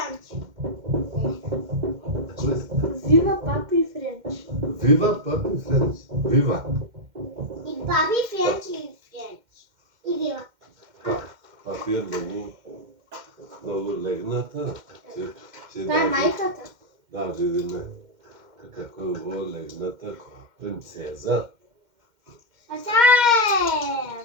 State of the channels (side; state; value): left; late; 2.1 ms